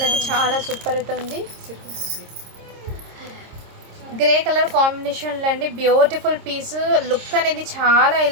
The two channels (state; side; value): late; left; 26 ms